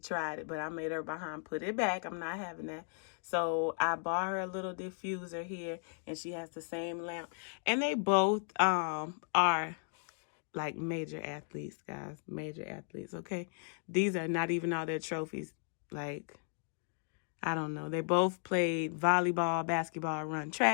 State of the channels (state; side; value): silent; right; 54 dB below the other